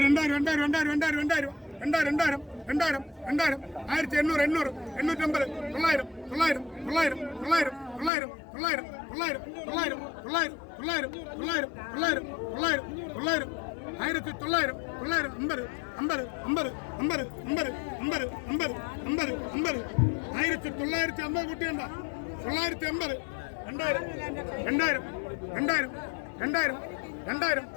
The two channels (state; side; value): drops out; right; at 8.1 s